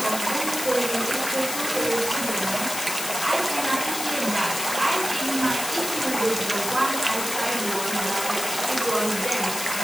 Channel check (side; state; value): left; noise; hiss, 5 dB below the sound